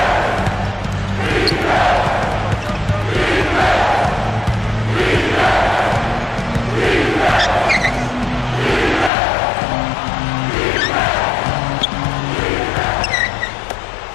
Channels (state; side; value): drops out; right; at 9.1 s